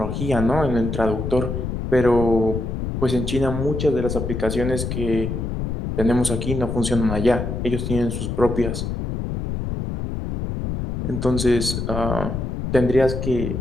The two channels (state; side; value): noise; left; rumble, 3 dB below the sound